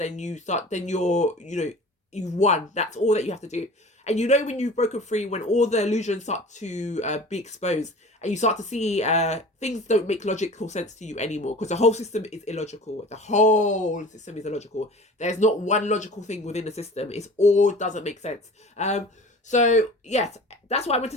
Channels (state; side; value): normal; both; correlation 0.41